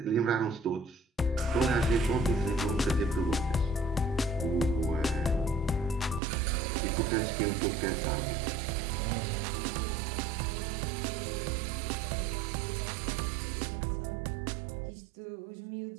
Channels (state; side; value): drops out; left; at 6.2 s